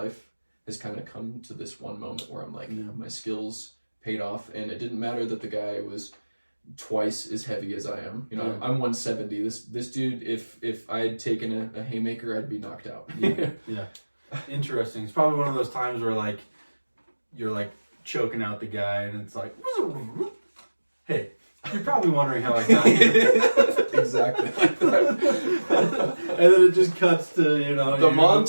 has kind of come to this one moment where I'm like, my skills paid off, and it didn't matter that the guy was twice as heavy as I am. I'm 170. This dude, if I had taken a haymaker, I'd be knocked out. Yeah. Interesting. It's probably one of those times where like you're like choking out the guy, and it's like, hey, you're probably wondering how I got here. Exactly. And then it just cuts to the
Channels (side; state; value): both; inverted; correlation -1.00